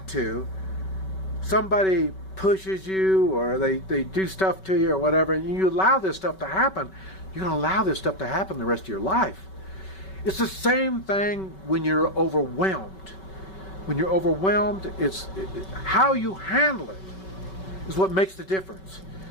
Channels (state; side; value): late; right; 5.3 ms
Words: to, somebody pushes you or they do stuff to you or whatever, and you allow this stuff to happen, you're going to allow this stuff to happen the rest of your life. It's the same thing when you're overwhelmed. When you're overwhelmed, how you handle it is what makes the difference.